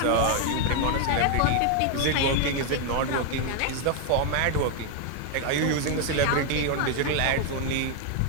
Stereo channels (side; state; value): both; different; correlation 0.01